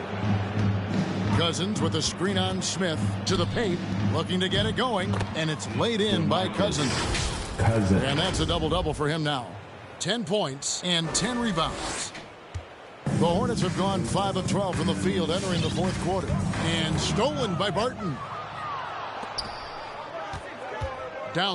Cousins with a screen on Smith to the paint, looking to get it going, and it's laid in by Cousins. And that's a double-double for him now. 10 points and 10 rebounds. The Hornets have gone 5 of 12 from the field entering the fourth quarter. And stolen by Barton.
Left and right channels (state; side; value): identical; both; correlation 1.00